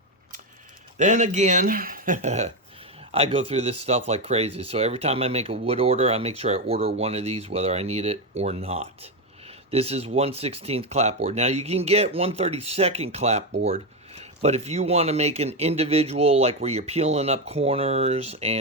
Then again, I go through this stuff like crazy. So every time I make a wood order, I make sure I order one of these, whether I need it or not. This is 1/16 clapboard. Now you can get 1/32 clapboard, but if you want to make an individual, like where you're peeling up corners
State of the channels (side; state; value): both; normal; correlation 0.10